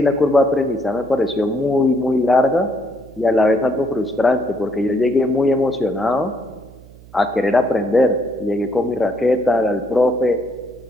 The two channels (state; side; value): noise; right; hum, 22 dB below the sound